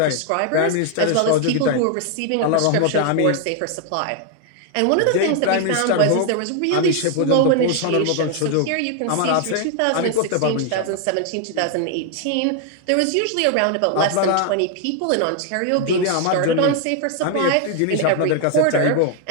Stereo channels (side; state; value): both; different; correlation 0.00